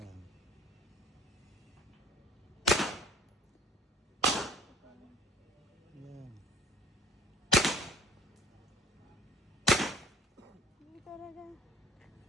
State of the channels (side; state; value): both; normal; correlation 0.49